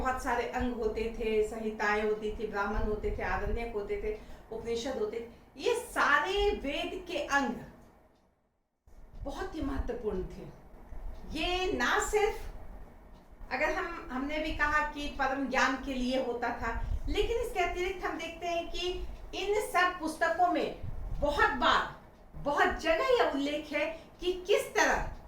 सारे अंग होते थे, संहिताएं होती थी, ब्राह्मण होते थे, आरण्यक होते थे, उपनिषद होते थे। ये सारे वेद के अंग बहुत ही महत्वपूर्ण थे। ये ना सिर्फ, अगर हमने भी कहा कि परम ज्ञान के लिए होता था, लेकिन इसके अतिरिक्त हम देखते हैं कि इन सब पुस्तकों में बहुत बार, बहुत जगह यह उल्लेख है कि किस तरह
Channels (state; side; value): identical; both; correlation 1.00